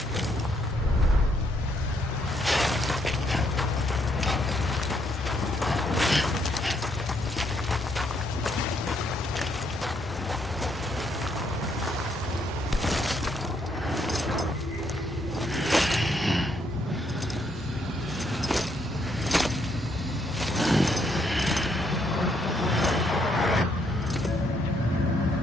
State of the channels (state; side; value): normal; both; correlation 0.72